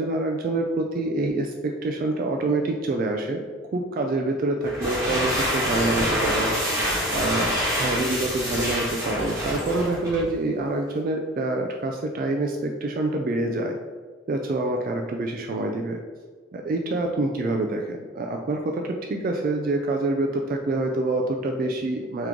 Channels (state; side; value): normal; both; correlation 0.41